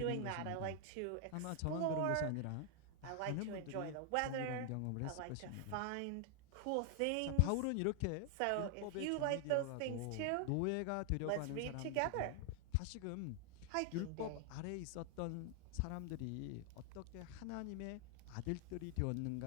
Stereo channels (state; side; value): different; both; correlation 0.00